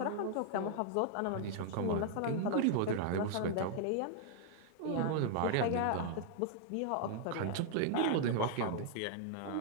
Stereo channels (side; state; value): both; different; correlation -0.01